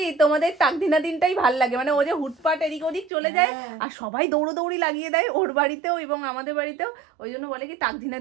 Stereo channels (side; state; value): left; drops out; at 3.1 s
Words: তোমাদের তাকদিনা দিনটাই ভাল লাগে, মানে ও যে হুটপাট এদিক ওদিক চলে যায় আর সবাই দৌড়োদৌড়ি লাগিয়ে দেয় ওর বাড়িতেও এবং আমাদের বাড়িতেও, ওই জন্য বলে কি তাকদিনা